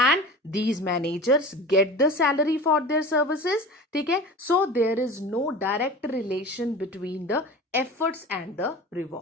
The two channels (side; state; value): both; normal; correlation 0.35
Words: these managers get the salary for their services, ठीक है, so there is no direct relation between the efforts and the